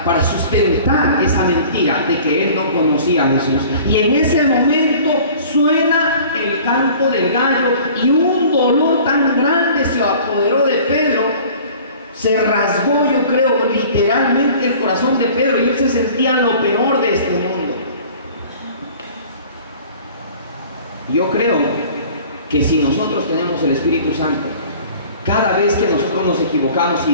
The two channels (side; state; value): both; inverted; correlation -0.47